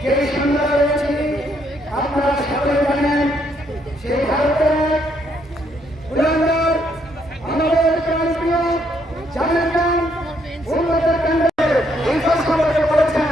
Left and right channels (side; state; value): both; normal; correlation 0.72